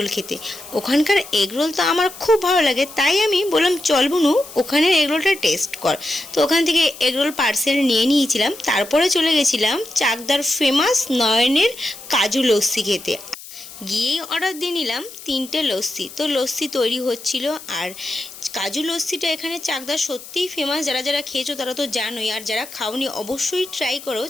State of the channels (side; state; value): left; noise; hiss, 16 dB below the sound